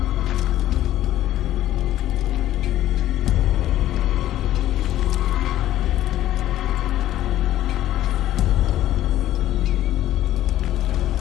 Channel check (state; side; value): quieter; right; 13.3 dB